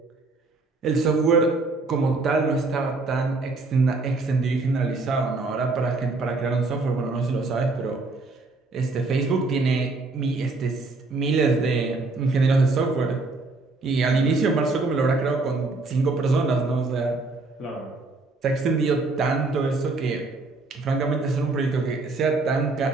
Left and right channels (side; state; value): left; quieter; 3.4 dB